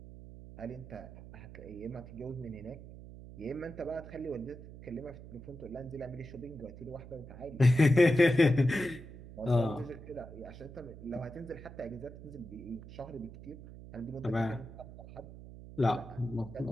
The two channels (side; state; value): right; noise; hum, 15 dB below the sound